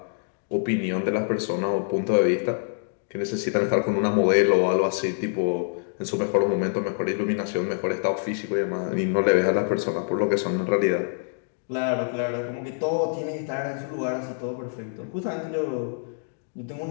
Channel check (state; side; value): silent; right; digital silence